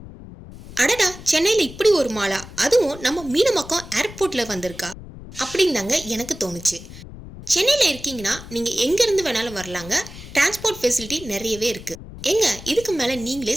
அடடா, சென்னையில் இப்படி ஒரு மாலா, அதுவும் நம்ம மீனம்பாக்கம் ஏர்போர்ட்டில் வந்திருக்கா அப்படின்னு தாங்க எனக்கு தோணுச்சு. சென்னையில் இருக்கீங்கன்னா நீங்கள் எங்கேருந்து வேணாலும் வரலாங்க. டிரான்ஸ்போர்ட் ஃபெசிலிட்டி நிறையவே இருக்குது. எங்க இதுக்கு மேலே நீங்களே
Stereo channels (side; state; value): left; noise; rumble, 15 dB below the sound